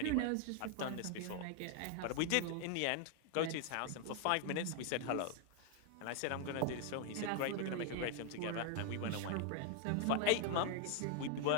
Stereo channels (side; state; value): both; different; correlation 0.00